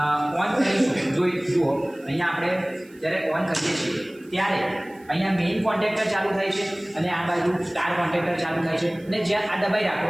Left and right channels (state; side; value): noise; right; hiss, 29 dB below the sound